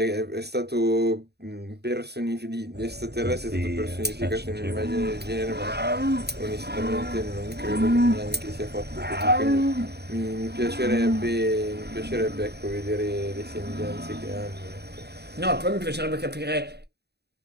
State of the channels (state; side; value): late; left; 0.48 ms